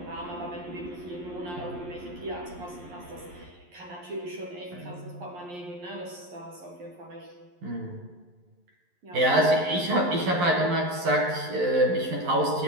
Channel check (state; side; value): late; left; 11 ms